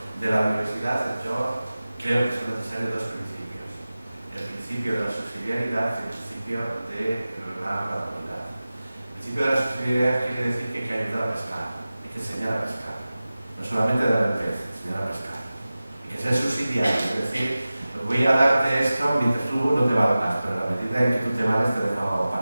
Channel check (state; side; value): inverted; both; correlation -0.96